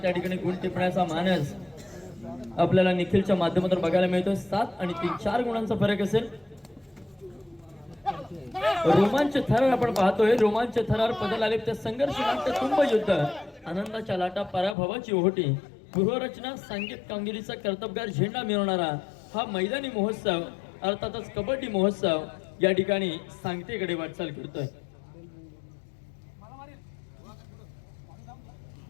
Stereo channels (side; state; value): right; drops out; at 14.8 s